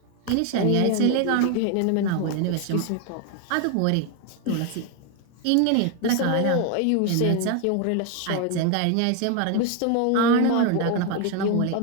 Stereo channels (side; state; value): both; different; correlation 0.01